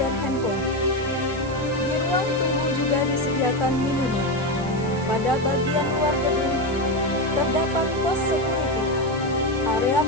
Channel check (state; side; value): noise; right; hiss, 20 dB below the sound